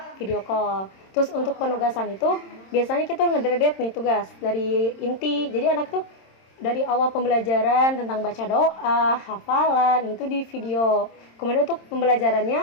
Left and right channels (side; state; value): right; late; 26 ms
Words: video call. Terus untuk penugasan itu biasanya kita ngedredet nih tugas dari inti. Jadi anak tuh dari awal pembelajaran tentang baca doa, hafalan, itu di video. Kemudian untuk